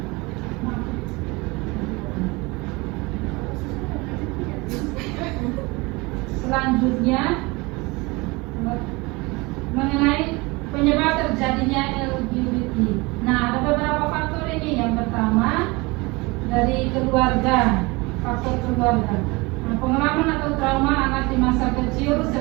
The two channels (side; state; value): left; quieter; 24.7 dB